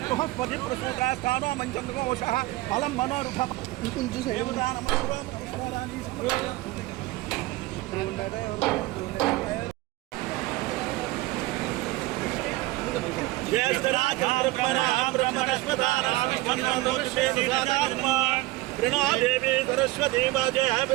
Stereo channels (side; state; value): left; quieter; 19.3 dB